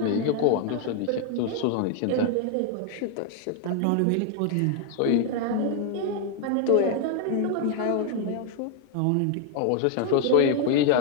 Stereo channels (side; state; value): both; different; correlation 0.00